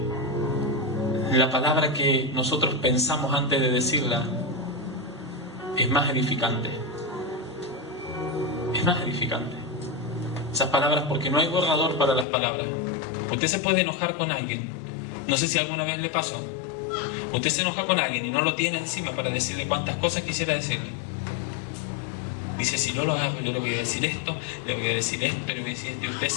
la palabra que nosotros pensamos antes de decirla es más edificante. Es más edificante. Esas palabras, porque no hay borrador para las palabras. Usted se puede enojar con alguien. No sé si alguna vez le pasó. Usted se enoja con alguien y no lo tiene encima para decirle cuántas cosas quisiera decirle. Dice, si yo lo hago, yo le voy a decir esto, le voy a decir esto, le voy a decir esto. Y usted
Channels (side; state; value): right; drops out; at 12.2 s